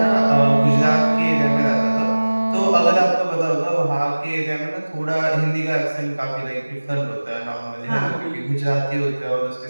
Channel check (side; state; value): both; inverted; correlation -1.00